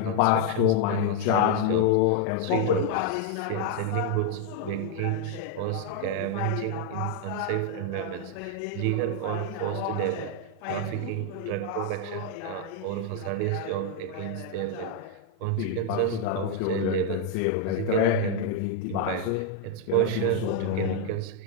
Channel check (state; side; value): different; both; correlation 0.00